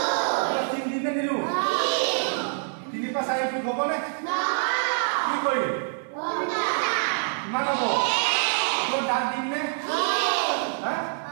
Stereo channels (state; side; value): silent; left; 61 dB below the other